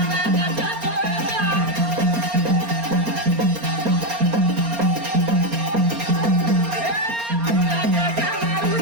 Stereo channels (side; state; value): left; late; 4.3 ms